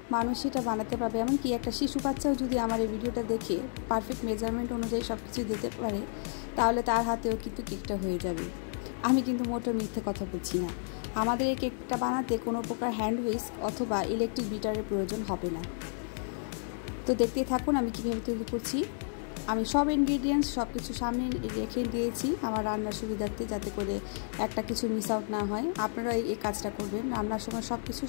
মানুষ এটা বানাতে পারবে। এমনকি একটা শিশু বাচ্চাও যদি আমার এই ভিডিওটা দেখে পারফেক্ট মেজারমেন্ট অনুযায়ী সব কিছু দিতে পারে, তাহলে তার হাতেও কিন্তু কেকটা হয়ে যাবে। আমি কিন্তু মোটেও মিথ্যে কথা বলছি না। আমাদের এই কেকটা বানাতে কোনো প্রকার হ্যান্ড হুইস্ক অথবা ইলেকট্রিক বিটারের প্রয়োজন হবে না। তো দেখতেই থাকুন আমি কীভাবে তৈরি করছি। আমি সব ইনগ্রিডিয়েন্টস সব কিছু সামনে রেখে দিয়েছি আমার রান্নার সুবিধার্থে, যাতে করে একটা কিছু মিস আউট না হয়। আপনারা এই কাজটা করবেন, রান্নার সময় সব কিছু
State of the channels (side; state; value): right; silent; digital silence